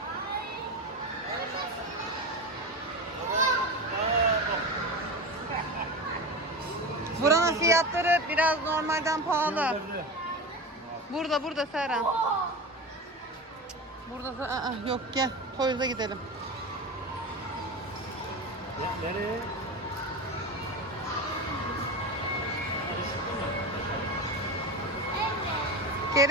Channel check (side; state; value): both; normal; correlation 0.25